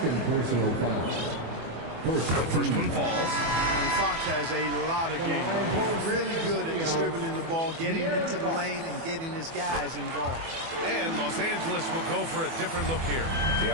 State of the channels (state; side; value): late; left; 24 ms